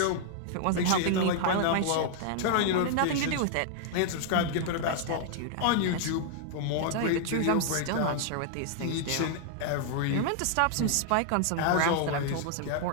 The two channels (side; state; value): both; different; correlation 0.00